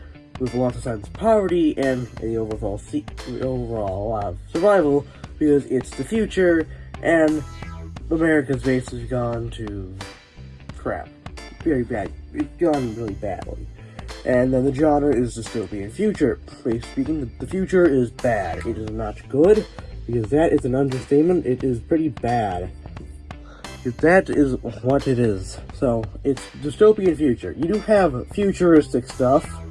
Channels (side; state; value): both; identical; correlation 1.00